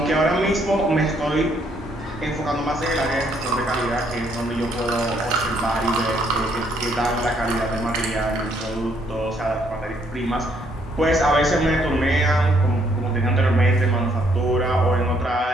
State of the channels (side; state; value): both; normal; correlation 0.69